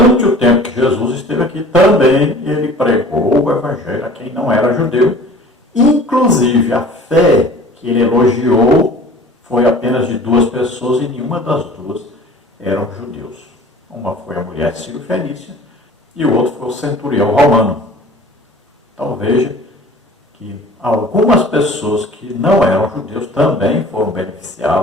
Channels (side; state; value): both; normal; correlation 0.46